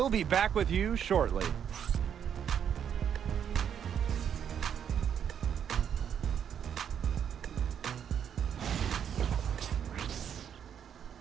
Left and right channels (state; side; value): quieter; left; 8.5 dB